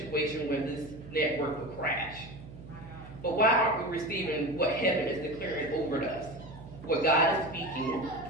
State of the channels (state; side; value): noise; right; hum, 15 dB below the sound